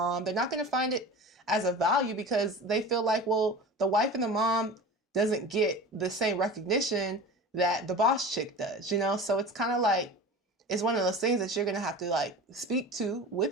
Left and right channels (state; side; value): normal; both; correlation 0.34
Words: They're not going to find it as a value because they feel like, well, the wife and the mom doesn't get the same recognition that the boss chick does, So it's kind of like, it's one of those things that you're going to have to like speak to